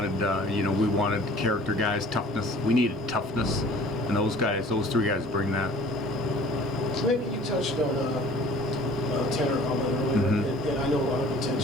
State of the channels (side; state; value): both; normal; correlation 0.49